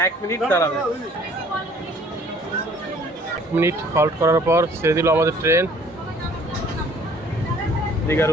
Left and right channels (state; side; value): normal; both; correlation 0.56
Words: 1 মিনিট দাঁড়াবে। 1 মিনিট হল্ট করার পর ছেড়ে দিল আমাদের ট্রেন দীঘার